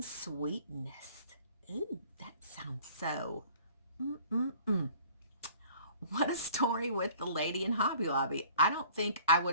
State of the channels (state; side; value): inverted; both; correlation -0.51